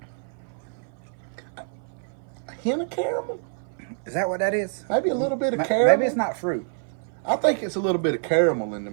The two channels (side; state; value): left; silent; 57 dB below the other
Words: A hint of caramel? Is that what that is? Maybe a little bit of caramel. Maybe it's not fruit. I think it's a little bit of caramel in the